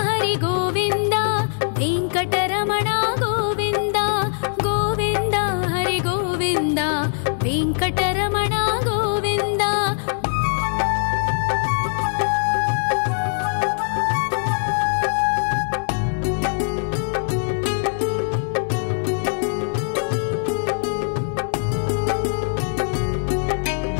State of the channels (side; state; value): right; silent; digital silence